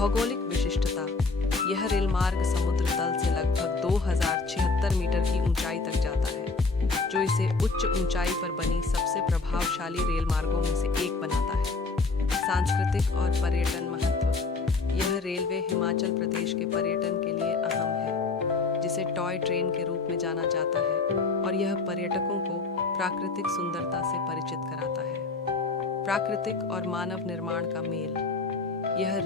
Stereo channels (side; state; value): right; quieter; 4.0 dB